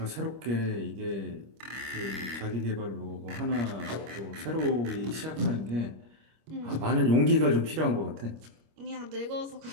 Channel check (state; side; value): late; left; 25 ms